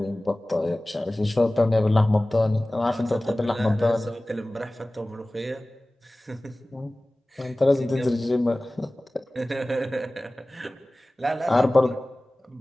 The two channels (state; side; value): normal; both; correlation 0.98